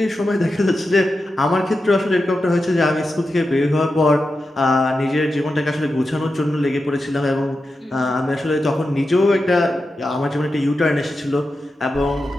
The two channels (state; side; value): normal; both; correlation 0.90